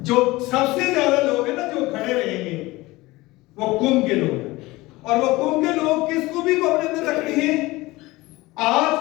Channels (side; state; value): right; quieter; 20.4 dB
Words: جو سب سے زیادہ لوگ ہیں نا جو کھڑے رہیں گے وہ قم کے لوگ ہیں، اور وہ قم کے لوگ کس خوبی کو اپنے اندر رکھتے ہیں؟ آج